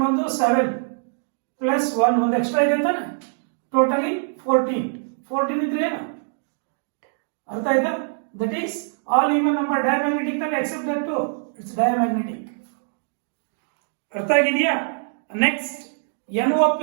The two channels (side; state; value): left; silent; digital silence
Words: ಬಂದು 7 ಪ್ಲಸ್ 1 ಒಂದು ಎಕ್ಸ್ಟ್ರಾ ಇದೆ ಅಂತಾನೆ ಟೋಟಲಿ 14 ಇದ್ರೆ ಏನು ಅರ್ಥ ಆಯ್ತಾ that is all even number diamagnetic ಅಲ್ಲಿ except that two it's diamagnetic ಅರ್ಥ ಆಗಿದೆಯಾ next NO